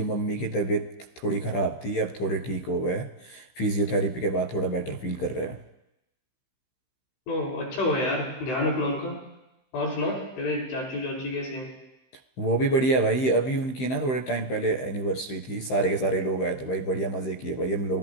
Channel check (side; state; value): right; late; 16 ms